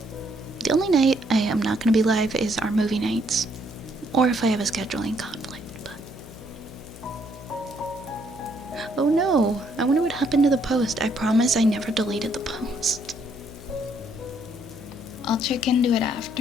The only night I am not going to be live is our movie nights, or if I have a scheduling conflict, but... Oh no, I wonder what happened to the post. I promise I never deleted the post. I'll check into it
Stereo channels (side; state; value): left; noise; hum, 16 dB below the sound